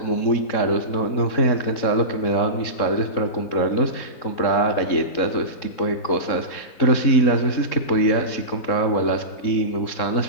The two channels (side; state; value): right; late; 3.7 ms